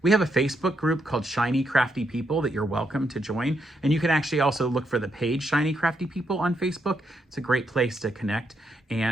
We have a Facebook group called Shiny Crafty People that you're welcome to join. And you can actually also look for the page Shiny Crafty People on Facebook. It's a great place to connect.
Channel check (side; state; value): both; normal; correlation 0.79